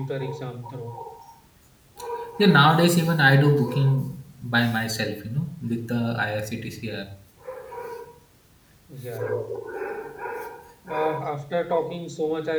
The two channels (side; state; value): both; identical; correlation 1.00